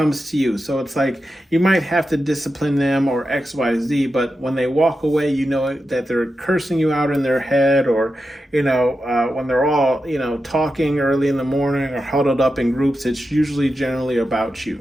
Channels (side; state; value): both; normal; correlation 0.90